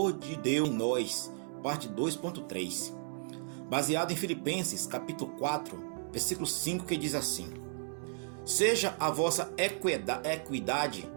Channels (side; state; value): left; silent; 55 dB below the other